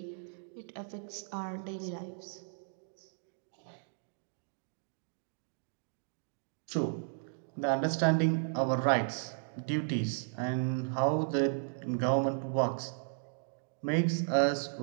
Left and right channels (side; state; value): left; silent; digital silence